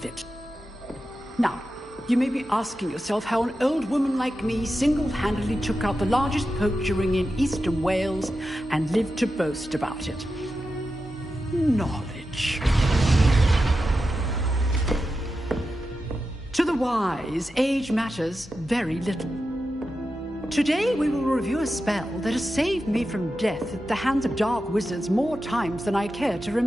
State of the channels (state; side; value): normal; both; correlation 0.90